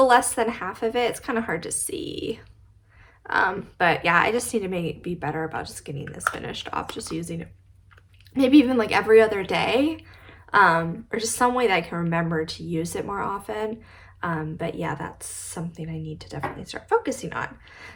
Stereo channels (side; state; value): both; identical; correlation 1.00